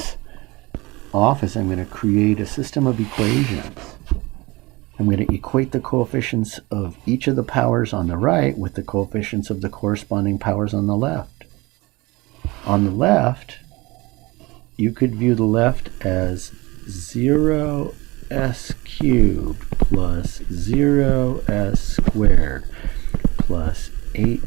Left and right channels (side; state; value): left; quieter; 22.8 dB